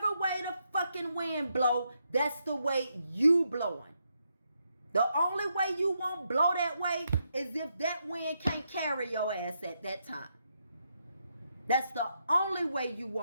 way the fucking wind blow, that's the way you blowing. The only way you won't blow that way is if that wind can't carry your ass at that time. That's the only way you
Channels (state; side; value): inverted; both; correlation -0.80